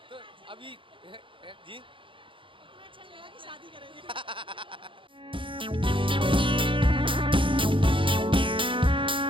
तो अभी। जी अच्छा लगा कि शादी करेंगे।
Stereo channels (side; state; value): left; late; 0.25 ms